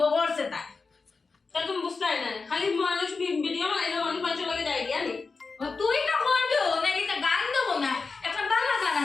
করছে তাই তা তুমি বুঝতাই না খালি মানুষ ভিডিও বানাইলো মানুষ পাঁচশো লাগে যাই গিয়া নি তুই না করবো নাকি তা গান দেবো না একটা বাংলা গান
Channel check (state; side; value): quieter; right; 4.4 dB